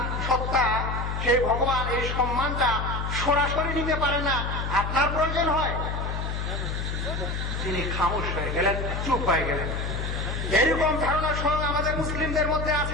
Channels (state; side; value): noise; left; hum, 3 dB below the sound